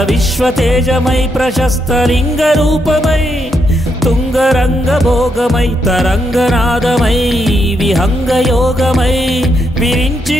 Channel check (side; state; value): both; normal; correlation 0.79